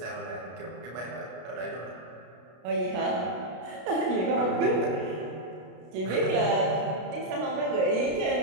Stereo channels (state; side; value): late; left; 33 ms